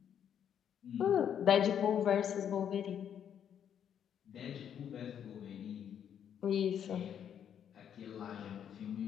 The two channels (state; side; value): quieter; right; 8.9 dB